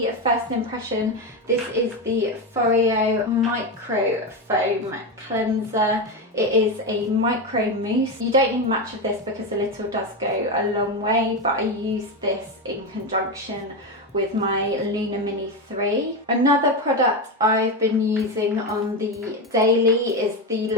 first impression. This is the Foreo Micro Foam Cleanser. It is a micro mousse. You don't need much of this because a little does go a long way, but I use this in conjunction with my Luna Mini 3. Another product I've been using on the daily is the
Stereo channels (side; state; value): both; normal; correlation 0.14